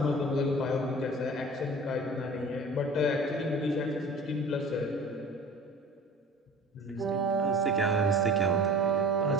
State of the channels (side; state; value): both; normal; correlation 0.43